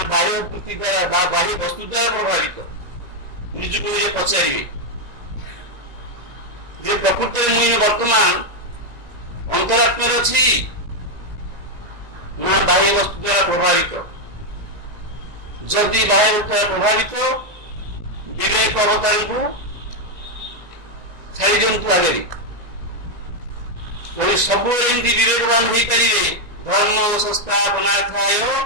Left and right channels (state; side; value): late; left; 2.0 ms